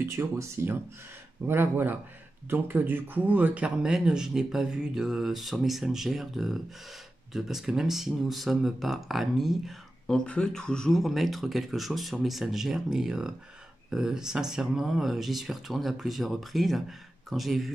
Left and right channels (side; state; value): both; normal; correlation 0.93